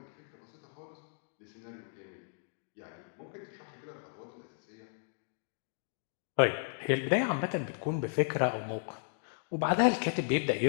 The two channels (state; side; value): silent; right; digital silence